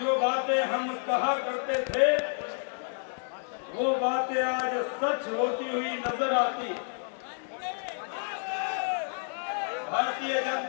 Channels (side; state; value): right; silent; digital silence